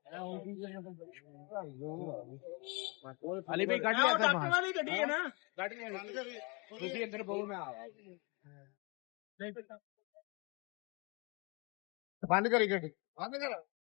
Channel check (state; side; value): quieter; right; 30.5 dB